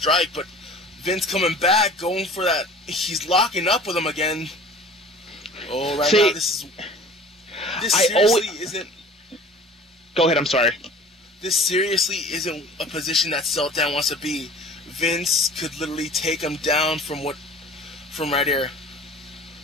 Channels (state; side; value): normal; both; correlation 0.44